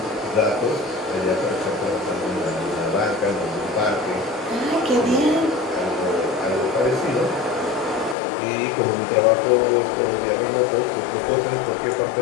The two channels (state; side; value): drops out; right; at 8.2 s